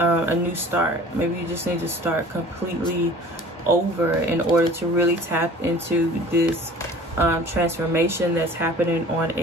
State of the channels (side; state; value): both; normal; correlation 0.45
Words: new start. Maybe you just need to start completely over in order to really tap into this transformation that's happening on